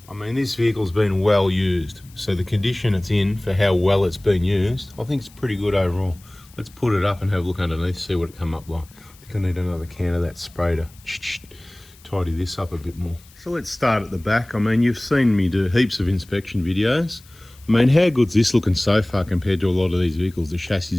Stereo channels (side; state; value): left; noise; hiss, 26 dB below the sound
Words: I mean, this vehicle's been well used. So the condition it's in for how well it's been used, I think it's pretty good overall. Let's put it up and have a look underneath, see what it come up like. I think I need another can of that spray to tidy this up a bit more. So let's start at the back. I mean, you've seen me do heaps of inspection videos. I mean, how good's this looking so far compared to a lot of these vehicles? The chassis